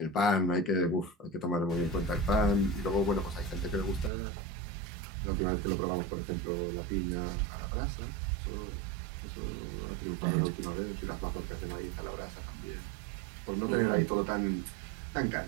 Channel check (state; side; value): drops out; left; at 4.1 s